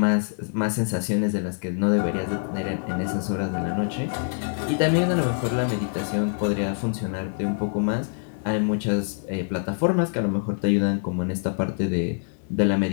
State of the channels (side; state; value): right; silent; digital silence